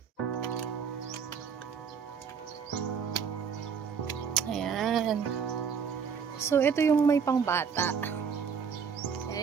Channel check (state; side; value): quieter; left; 6.6 dB